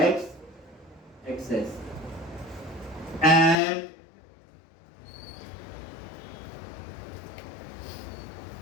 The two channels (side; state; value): right; drops out; at 3.6 s